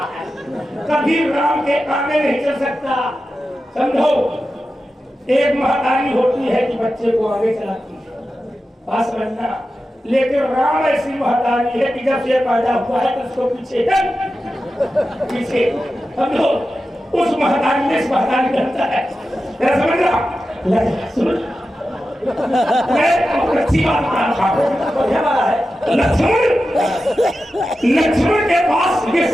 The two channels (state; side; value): normal; both; correlation 0.92